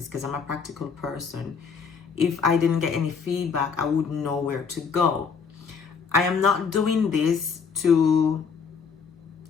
because I'm a practical person, if I didn't get any feedback, I wouldn't know where to go. I am not doing this to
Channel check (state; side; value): quieter; right; 5.9 dB